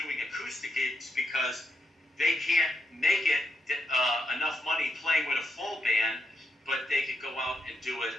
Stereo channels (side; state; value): both; normal; correlation 0.82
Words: acoustic gigs because they can't make it enough money playing with a full band, but they could go out and do it